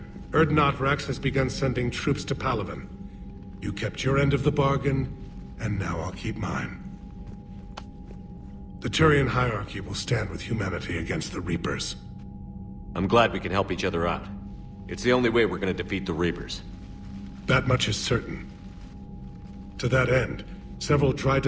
Urdnot Rex has begun sending troops to Palaven. You kept your end of the bargain, and now I'll keep mine. The Turian hierarchy will stand with humanity against the Reapers. I'm glad we can help each other out. It's the only way we're gonna defeat the Reapers. That much is certain. To that end, several dry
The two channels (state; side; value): identical; both; correlation 1.00